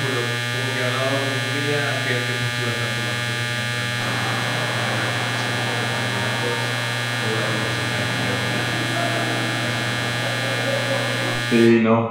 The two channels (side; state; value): both; identical; correlation 1.00